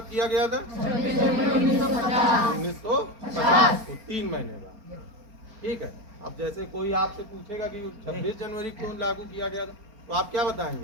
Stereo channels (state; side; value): late; left; 4.3 ms